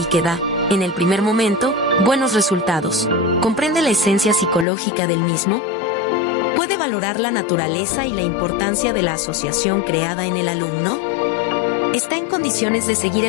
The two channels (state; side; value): drops out; right; at 4.7 s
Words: que da, en el primer momento, buenos resultados, ¿comprende la esencia psicológica del mismo? ¿Puede valorar la naturaleza y la importancia de la asociación creada en el alumno? ¿Está en condiciones de seguir